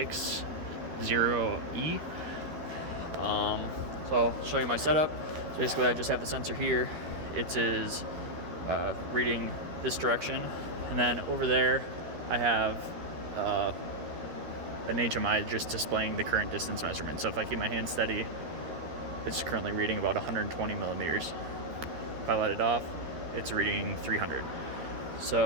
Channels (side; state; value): left; late; 13 ms